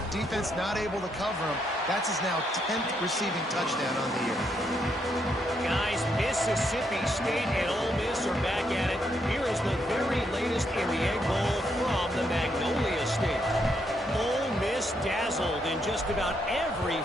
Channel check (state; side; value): normal; both; correlation 0.77